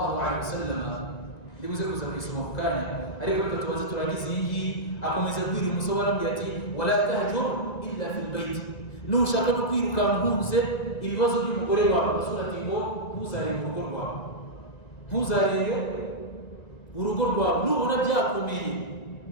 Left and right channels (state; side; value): late; right; 1.9 ms